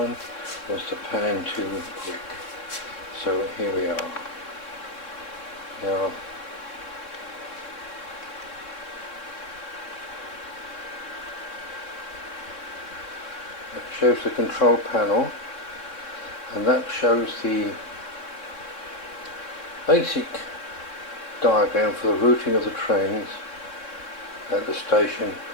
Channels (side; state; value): right; late; 3.6 ms